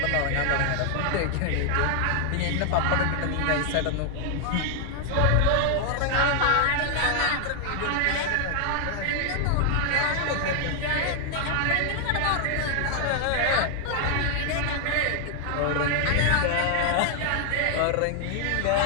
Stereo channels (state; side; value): different; both; correlation 0.00